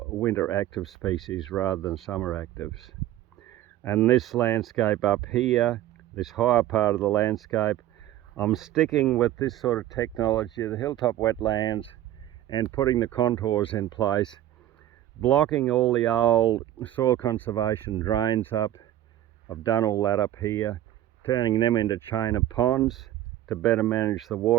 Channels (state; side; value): quieter; left; 13.3 dB